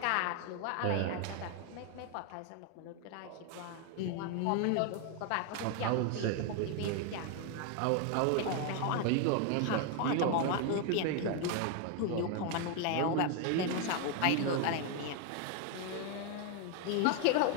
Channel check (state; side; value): different; both; correlation 0.01